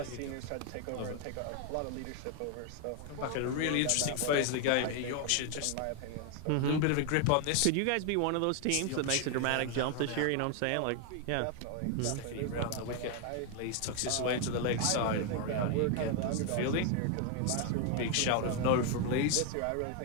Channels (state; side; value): different; both; correlation 0.00